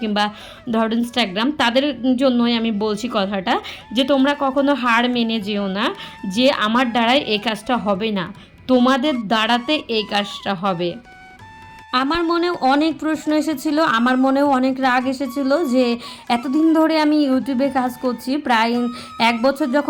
কিংবা ধরো ইনস্টাগ্রাম, তাদের জন্যই আমি বলছি কথাটা, যে তোমরা কখনো হার মেনে যেও না যে আমার দ্বারাই এই কাজটা হবে না, তোমাদের দ্বারাতে এই কাজটা হবে। আমার মনেও অনেক প্রশ্ন এসেছিলো, আমার মনেও অনেক রাগ এসেছিলো যে এতদিন ধরে আমি ইউটিউবে কাজ করছি, প্রায় 1 বছর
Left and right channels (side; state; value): both; identical; correlation 1.00